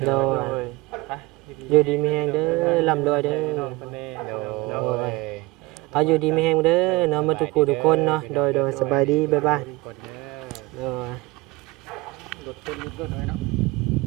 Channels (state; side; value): quieter; left; 21.5 dB